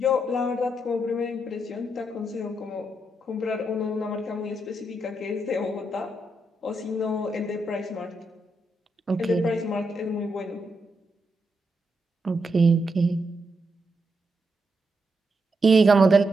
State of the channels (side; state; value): both; normal; correlation 0.82